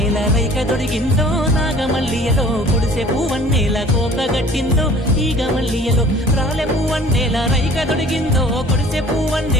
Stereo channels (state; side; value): normal; both; correlation 0.50